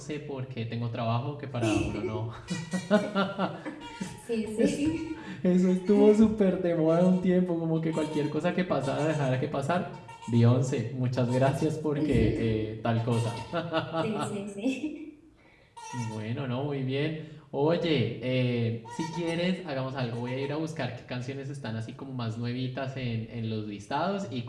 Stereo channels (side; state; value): both; identical; correlation 1.00